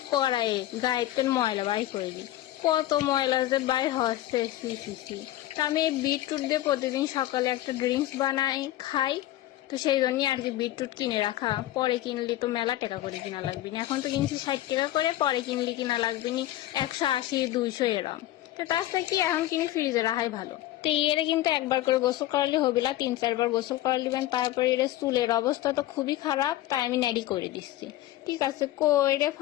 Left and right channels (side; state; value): right; quieter; 14.8 dB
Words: করায় গায়েতে ময়লা বাই করে দিই, কত ময়লা যে বাই হচ্ছে। তো আমি এই বিটরুট দিয়ে প্রতিদিন সকালে একটা ড্রিঙ্কস বানাই খাই। তো সেই জন্যই আর কি বিটরুট কিনে রাখা, পরে কিনলে তো মেলা টাকা করে কিনা লাগবে না। এখন তো কিনছি 60 টাকা করে, পরে কিনলে কিনা লাগবে নি 180-200 এরম। তো তার থেকে কি এখন কিনে ফ্রিজে রাখাই ভালো। তো এর কিন্তু একবার করে গোসল করালে হবে না, 3-4 বার গোসল করা দিবেন। তারপরে এর চুলের অবস্থা তো খুবই খারাপ, তাই আমি নেড়ি করে দিচ্ছি। ঠিক আছে, কইরে